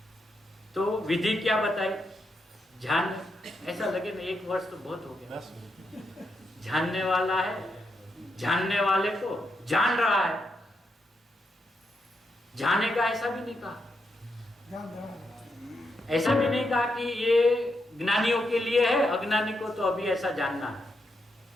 तो विधि क्या बताई? ध्यान। ऐसा लगे ना 1 वर्ष तो बहुत हो गया। जानने वाला है, जानने वाले को जान रहा है, जाने का ऐसा भी नहीं कहा। ऐसा भी नहीं कहा कि ये ज्ञानियों के लिए है, अज्ञानी को तो अभी ऐसा जानना है।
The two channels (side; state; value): both; normal; correlation 0.82